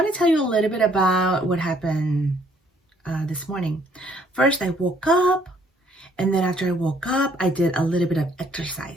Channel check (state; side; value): normal; both; correlation 0.64